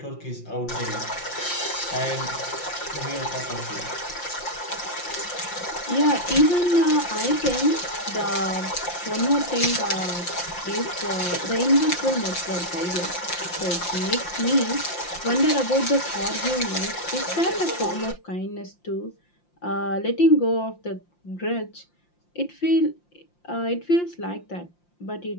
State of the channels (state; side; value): late; right; 5.7 ms